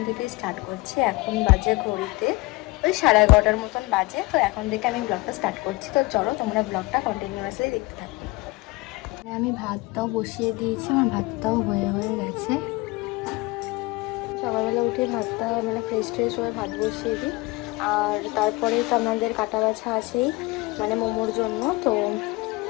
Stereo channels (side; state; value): right; quieter; 23.1 dB